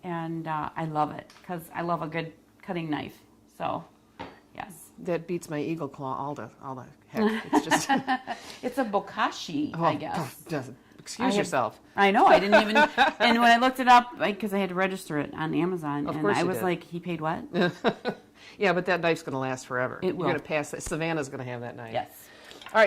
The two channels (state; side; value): identical; both; correlation 1.00